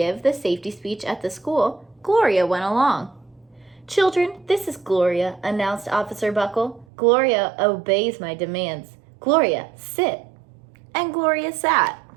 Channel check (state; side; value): drops out; left; at 6.9 s